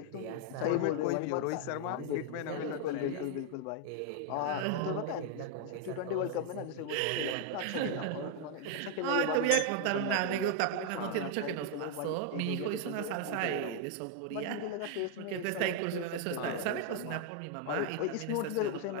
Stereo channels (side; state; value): both; different; correlation 0.00